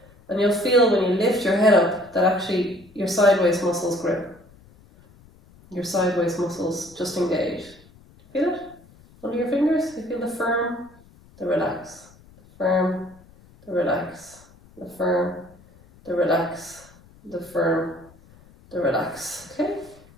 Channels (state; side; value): noise; left; rumble, 26 dB below the sound